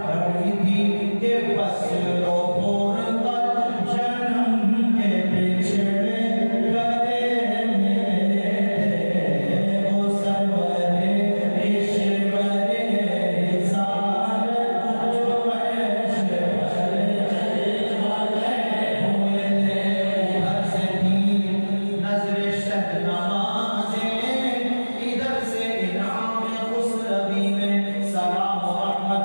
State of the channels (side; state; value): both; inverted; correlation -1.00